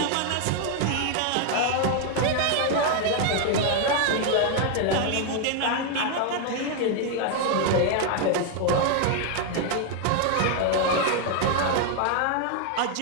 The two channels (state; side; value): different; both; correlation 0.00